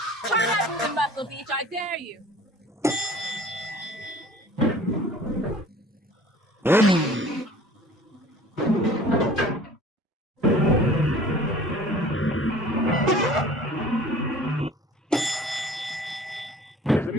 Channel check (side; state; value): both; normal; correlation 0.47